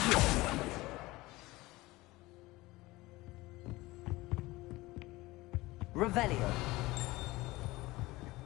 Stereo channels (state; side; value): quieter; right; 20.0 dB